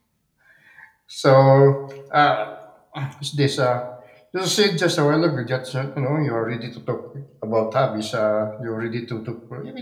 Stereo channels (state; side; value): identical; both; correlation 1.00